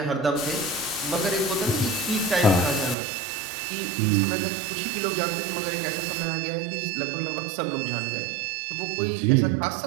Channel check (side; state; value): left; drops out; at 3.0 s